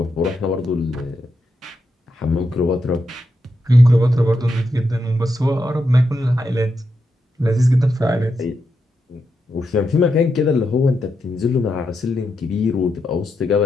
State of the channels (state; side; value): normal; both; correlation 0.85